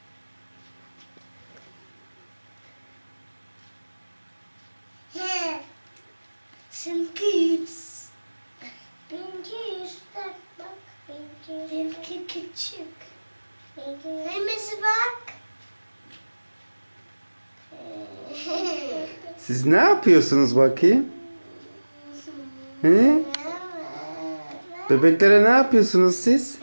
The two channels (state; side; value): inverted; both; correlation -1.00